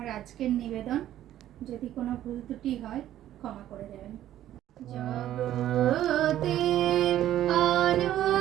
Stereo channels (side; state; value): left; quieter; 12.5 dB